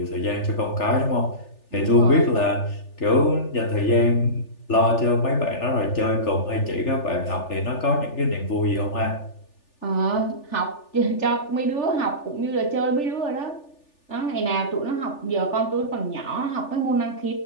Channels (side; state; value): right; late; 3.4 ms